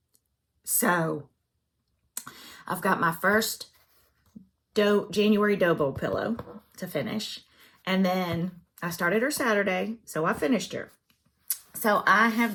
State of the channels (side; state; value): both; identical; correlation 1.00